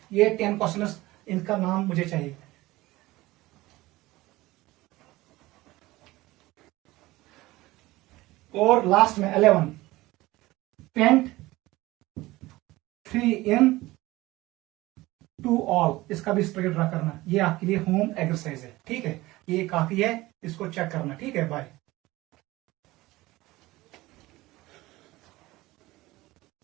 ये 10 क्वेश्चन, इनका नाम मुझे चाहिए। और लास्ट में 11, पेंट 3 इन 2 ऑल। इसका भी स्ट्रक्चर ड्रा करना। ये आपके लिए होम एक्सरसाइज है, ठीक है? ये काफी है, इसको चेक करना, ठीक है? बाय।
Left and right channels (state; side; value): quieter; left; 19.0 dB